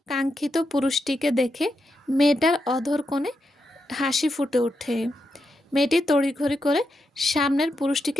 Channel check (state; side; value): normal; both; correlation 0.85